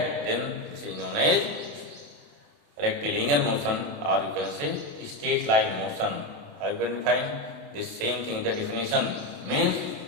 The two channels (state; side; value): late; left; 28 ms